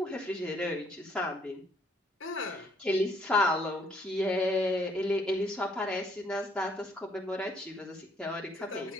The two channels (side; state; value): both; normal; correlation 0.67